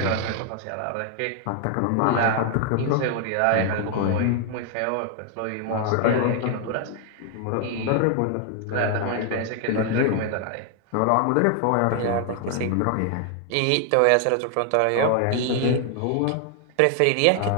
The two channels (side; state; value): both; different; correlation 0.00